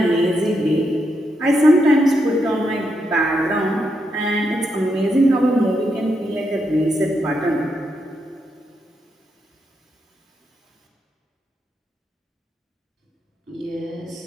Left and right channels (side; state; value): both; normal; correlation 0.82